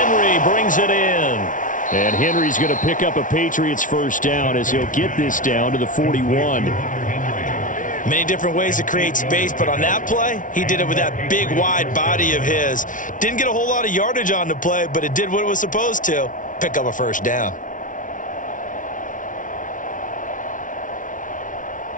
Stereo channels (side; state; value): right; late; 0.38 ms